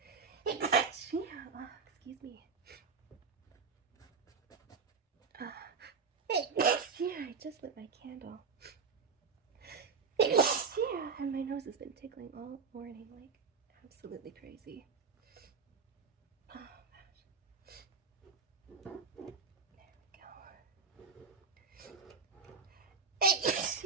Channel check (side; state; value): left; quieter; 5.3 dB